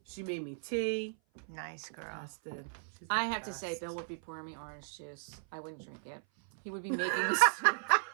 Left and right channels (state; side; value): silent; left; 54 dB below the other